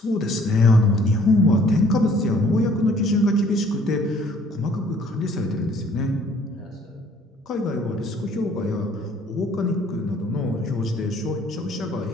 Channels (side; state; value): both; normal; correlation 0.58